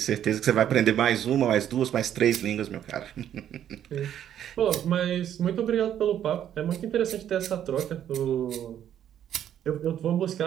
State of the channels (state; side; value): quieter; left; 10.3 dB